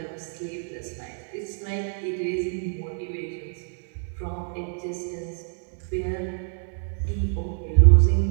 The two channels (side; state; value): left; silent; 61 dB below the other